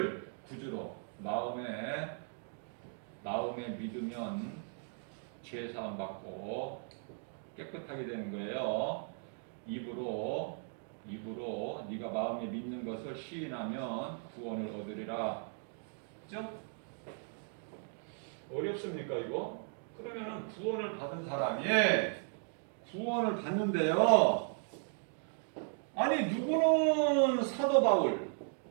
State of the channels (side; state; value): left; silent; 53 dB below the other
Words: 구주로 마음에 믿으면 죄 사함 받고 깨끗하게 되는 거예요. 입으로 네가 마음에 믿는 것을 시인하면 구원을 얻으리라. 그죠? 어렵습니까 이거? 그러면은 구원을 받은 사람이 구원을 받는데요. 아니 누구는 사도 바울,